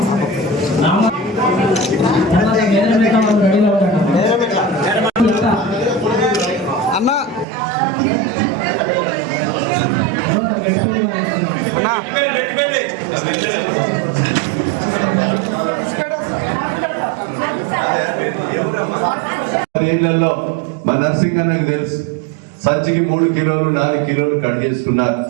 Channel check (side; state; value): left; drops out; at 7.5 s